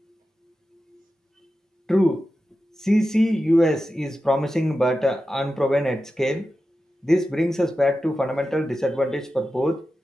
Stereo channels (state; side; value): normal; both; correlation 0.92